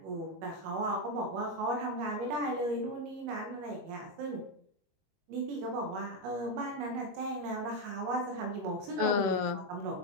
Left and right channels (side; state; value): left; late; 21 ms